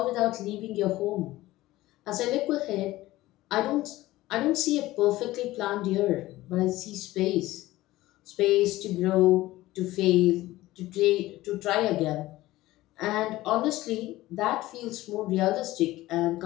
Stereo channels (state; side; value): quieter; right; 17.2 dB